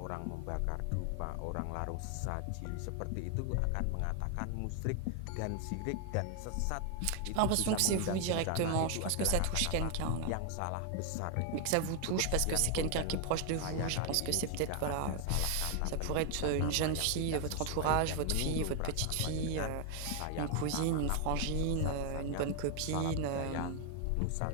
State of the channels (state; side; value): different; both; correlation 0.00